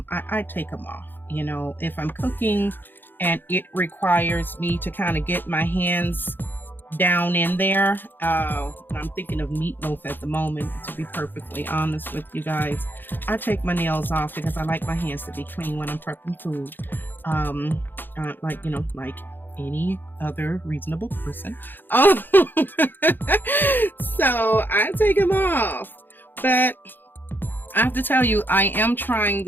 take them off. If I'm cooking and it requires me to kind of get my hands down in there, I'm thinking of meatloaf at the moment, to be perfectly honest with you guys. I take my nails off because I like my hands to be clean when I'm prepping food, like any other reasonable person. So I take them off, but I have to tell you, I am trying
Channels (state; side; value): late; right; 0.094 ms